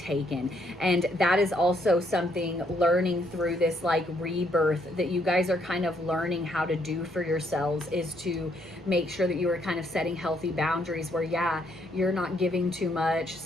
And that is also something learning through this like rebirth that you guys are kind of learning how to do for yourselves, is to make sure that you are kind of setting healthy boundaries where, yeah, yeah, you're not giving too much,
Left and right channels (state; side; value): normal; both; correlation 0.71